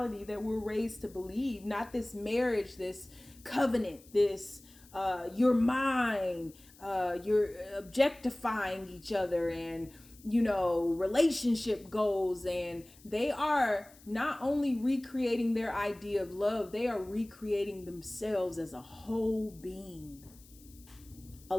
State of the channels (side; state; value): left; noise; hiss, 24 dB below the sound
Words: that we're raised to believe, not this marriage, this covenant, this you're mine, you're objectifying each other and relationship goals. And they are not only recreating their idea of love, they are recreating themselves as a whole being,